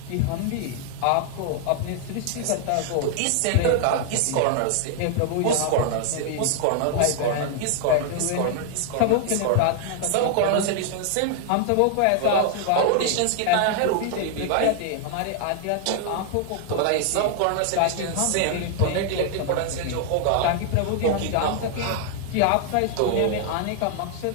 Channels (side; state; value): both; different; correlation 0.00